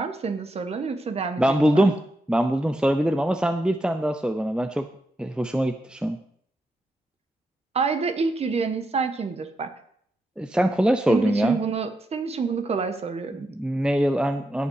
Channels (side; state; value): both; normal; correlation 0.84